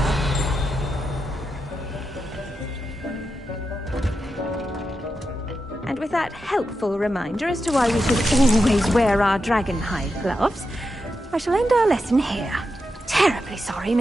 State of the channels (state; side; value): normal; both; correlation 0.87